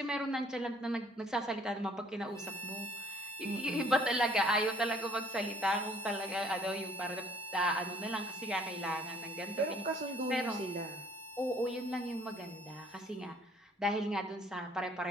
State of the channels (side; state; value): both; normal; correlation 0.58